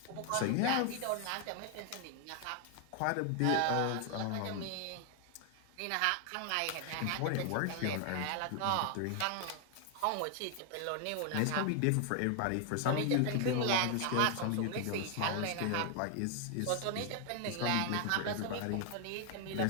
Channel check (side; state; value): both; different; correlation 0.00